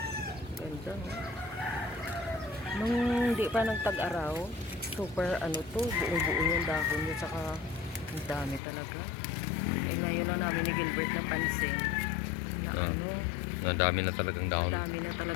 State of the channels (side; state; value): right; drops out; at 8.6 s